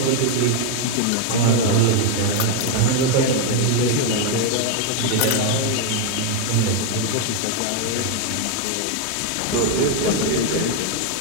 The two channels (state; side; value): different; both; correlation 0.01